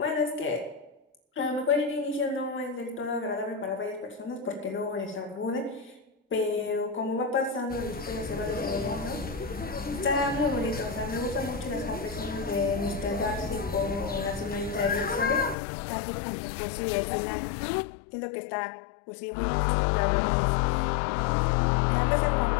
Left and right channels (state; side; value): drops out; right; at 15.6 s